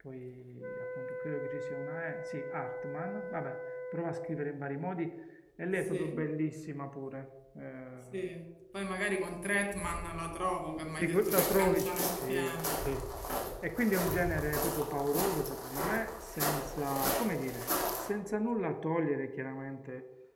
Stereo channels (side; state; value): both; identical; correlation 1.00